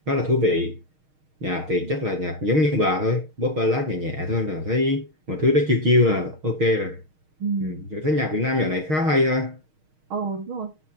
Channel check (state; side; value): late; left; 6.4 ms